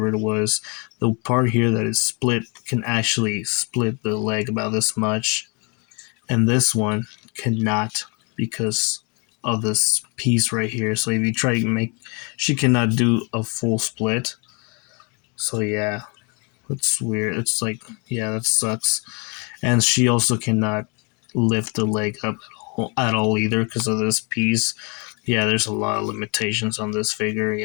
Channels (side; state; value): right; quieter; 33.2 dB